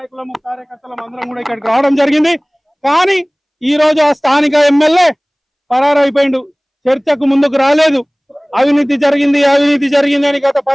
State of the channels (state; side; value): identical; both; correlation 1.00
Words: కార్యకర్తలం అందరం కూడా ఇక్కడికి రావడం జరిగింది. కానీ ఈ రోజు ఆ స్థానిక ఎమ్మెల్యే పరారైపోయిండు, చర్చకు ముందుకు రాలేదు. అవినీతి జరిగింది అని గత